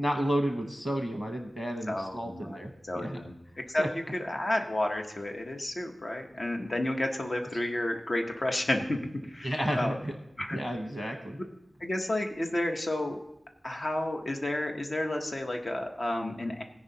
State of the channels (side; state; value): both; normal; correlation 0.96